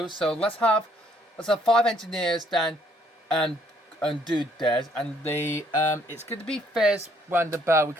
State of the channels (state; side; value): normal; both; correlation 0.66